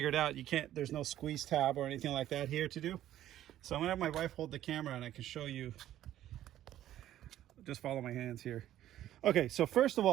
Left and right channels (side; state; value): left; quieter; 12.6 dB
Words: out you can't, there's no squeeze tab or anything like that here to do. So I'm gonna have my wife hold the camera and I can show you. Just follow my hands here. Okay, so first of